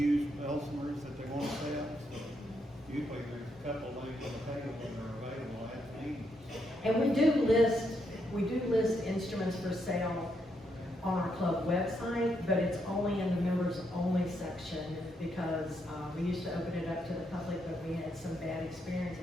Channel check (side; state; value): both; normal; correlation 0.78